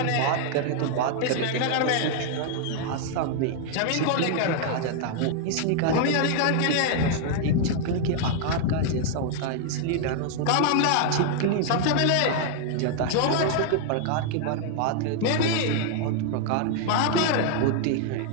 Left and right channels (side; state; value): both; different; correlation 0.00